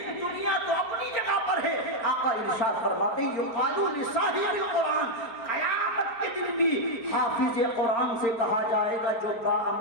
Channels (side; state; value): right; late; 4.5 ms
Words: دنیا تو اپنی جگہ پر ہے. آقا ارشاد فرماتے ہیں یقال لصاحب القرآن، قیامت کے دن بھی حافظ قرآن سے کہا جائے گا جو